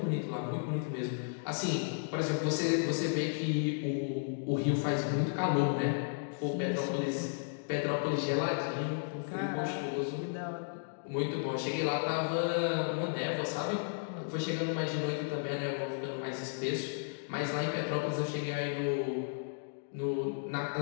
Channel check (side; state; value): right; silent; digital silence